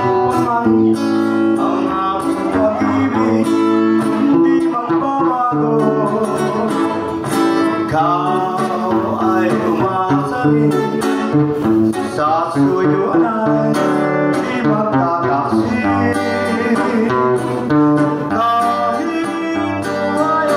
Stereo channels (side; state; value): both; identical; correlation 1.00